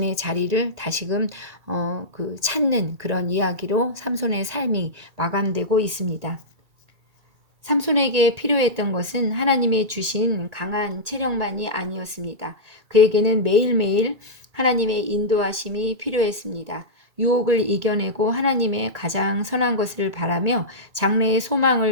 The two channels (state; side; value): late; left; 2.3 ms